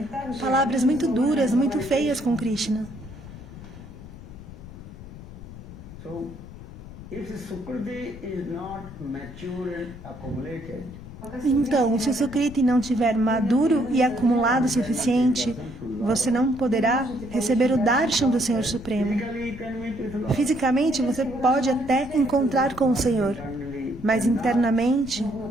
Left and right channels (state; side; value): noise; left; rumble, 15 dB below the sound